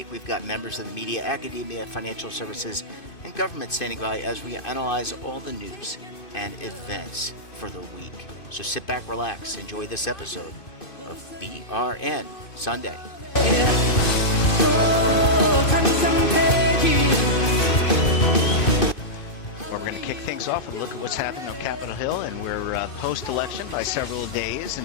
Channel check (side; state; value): right; late; 2.5 ms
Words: We've got members of the media, academia, financial services, and government standing by as we analyze all the news and events for the week. So sit back, relax, enjoy this episode of BRN Sunday. We're going to kick things off and look at what's happening on Capitol Hill, and we're post-election by several days.